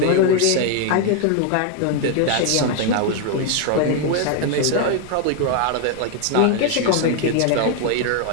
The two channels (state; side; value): different; both; correlation 0.01